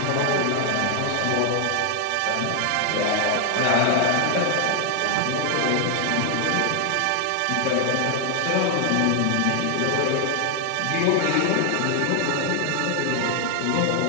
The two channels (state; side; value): different; both; correlation 0.00